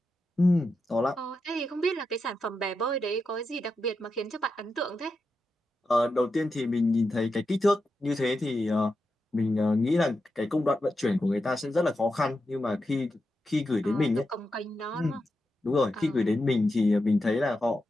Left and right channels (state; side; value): normal; both; correlation 0.88